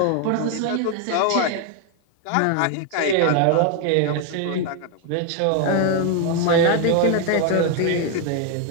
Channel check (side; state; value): both; different; correlation 0.00